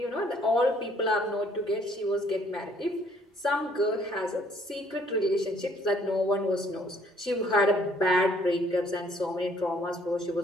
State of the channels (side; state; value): both; normal; correlation 0.63